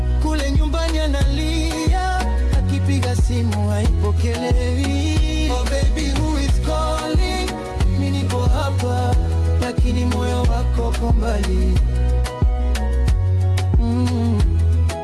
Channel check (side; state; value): both; identical; correlation 1.00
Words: Kule nyumbani analia, akipiga simu haipokelewi. Oh baby, who is calling? Mimi niko hapa, lakini moyo wako uko mbali.